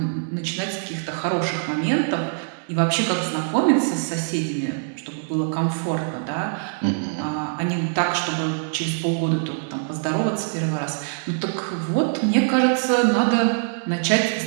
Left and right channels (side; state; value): left; silent; 63 dB below the other